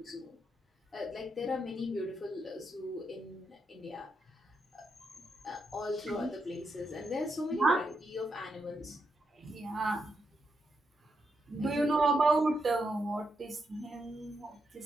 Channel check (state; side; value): normal; both; correlation 0.82